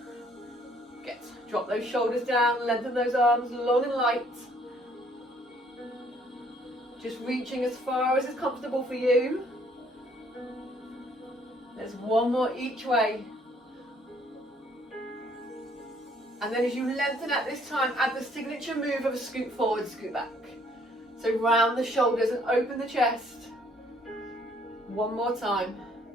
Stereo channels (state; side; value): normal; both; correlation 0.63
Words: Good. Drop those shoulders down, lengthen those arms long and light. Just reaching as far as is comfortable for you. There's 1 more each way. And then as you lengthen at this time, add the signature move of a scoot forward, scoot back. So round the shoulders and open the chest. 1 more time.